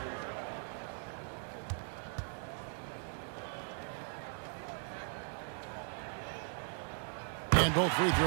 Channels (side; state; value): left; silent; 52 dB below the other